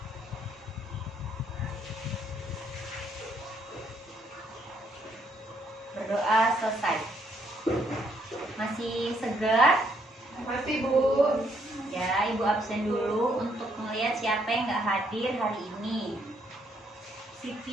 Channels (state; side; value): normal; both; correlation 0.70